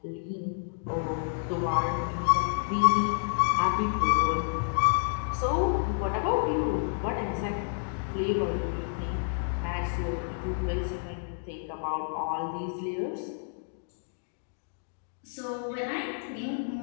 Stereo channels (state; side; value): silent; right; digital silence